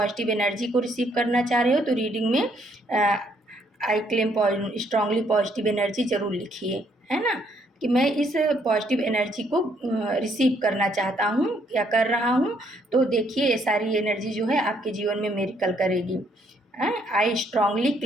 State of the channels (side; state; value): both; normal; correlation 0.69